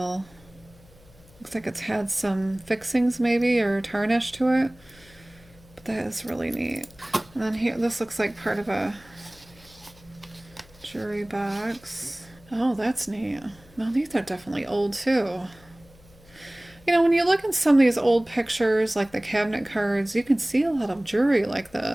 Looks like it's had some fixings maybe or tarnish to it. But that is really neat. And then here, this looks like part of a jewelry box. Oh, that's neat. Well, these are definitely old too. You know, when you look at some of these old pictures, like the cabinet cards, you can see a lot of jewelry like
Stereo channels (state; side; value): noise; left; hum, 26 dB below the sound